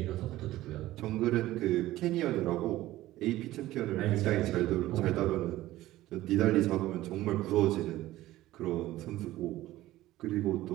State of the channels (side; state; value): left; quieter; 15.9 dB